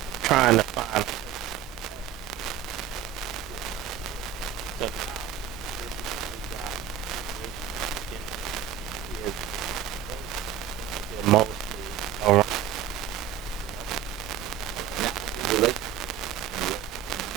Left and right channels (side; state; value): left; quieter; 9.8 dB